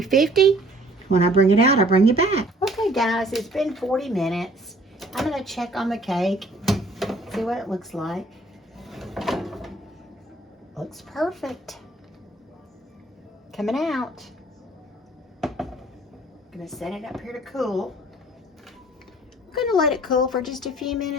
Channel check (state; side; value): normal; both; correlation 0.56